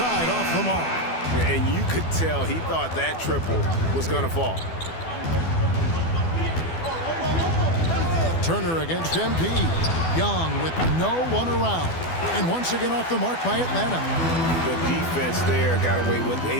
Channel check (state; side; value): late; right; 12 ms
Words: off the mark. And you could tell he thought that triple was going to fall. Turner against MP. Young with no one around. And once again off the mark by Atlanta. The defense there got away with